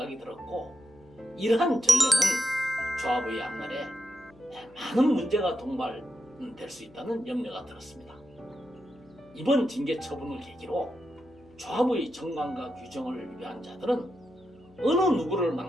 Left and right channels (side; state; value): left; noise; hum, 26 dB below the sound